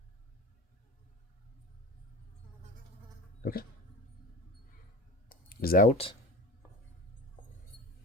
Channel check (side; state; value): both; normal; correlation 0.33